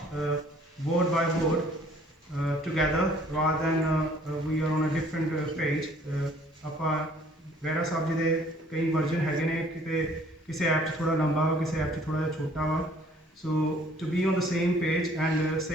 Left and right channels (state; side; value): normal; both; correlation 0.57